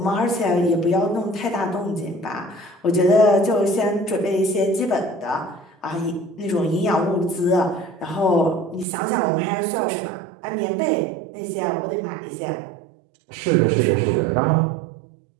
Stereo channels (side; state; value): left; drops out; at 8.8 s